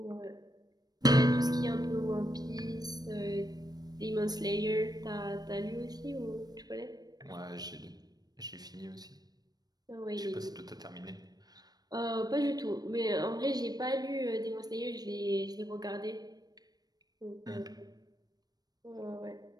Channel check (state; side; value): late; left; 0.19 ms